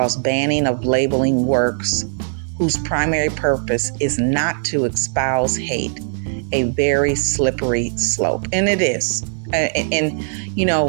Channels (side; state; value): left; silent; 66 dB below the other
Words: banning of labeling works whose primary purpose is not to espouse hate a very slippery slope. And it is. And you